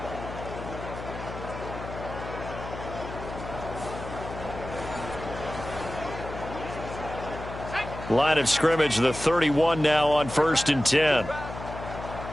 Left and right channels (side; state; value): left; noise; hum, 10 dB below the sound